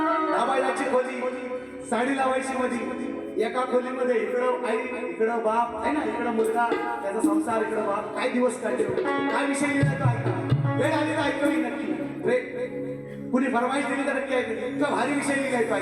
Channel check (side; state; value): both; identical; correlation 1.00